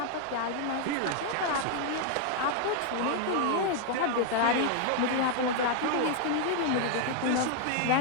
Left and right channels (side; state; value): both; different; correlation 0.00